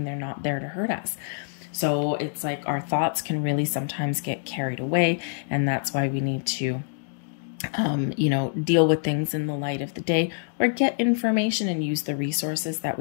They're not there to hurt us. So it's like our thoughts can really sometimes get carried away, and that's why we need to deal with things in the light of the day, or get information and use the resources that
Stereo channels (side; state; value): right; silent; digital silence